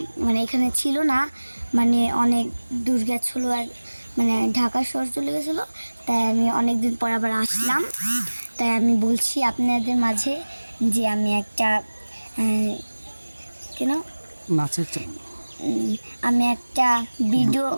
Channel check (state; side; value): inverted; both; correlation -1.00